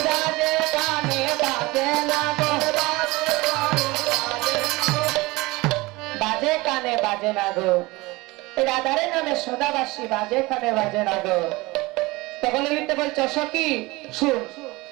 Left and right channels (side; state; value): left; quieter; 22.2 dB